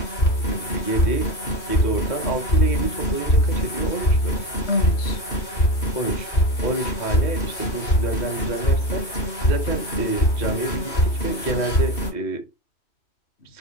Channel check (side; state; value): right; late; 2.7 ms